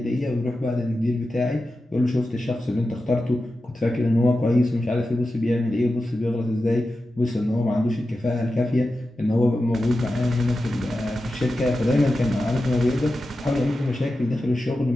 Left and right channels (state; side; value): normal; both; correlation 0.92